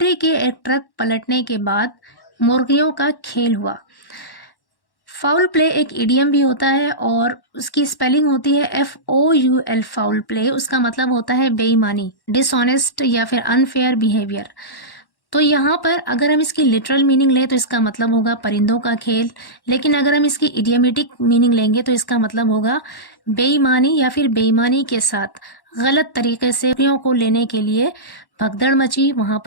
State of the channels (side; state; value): right; late; 1.1 ms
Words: के एक ट्रक पलटने के बाद मुर्गियों का खेल हुआ। फाउल प्ले एक इडियम भी होता है और उसकी स्पेलिंग होती है FOUL, फाउल प्ले। उसका मतलब होता है बेईमानी, डिसऑनेस्ट या फिर अनफेयर बिहेवियर। तो यहाँ पर अगर हम इसकी लिटरल मीनिंग लें तो इसका मतलब होगा परिंदों का खेल, लेकिन अगर हम इसकी इडियमेटिक मीनिंग लेंगे तो इसका मतलब होगा बेईमानी या फिर बेईमानी के साथ गलत तरीके से मुर्गियों को लेने के लिए भगदड़ मची, वहां